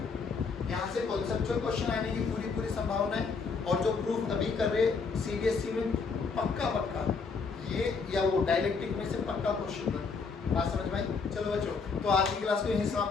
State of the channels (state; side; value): quieter; right; 4.9 dB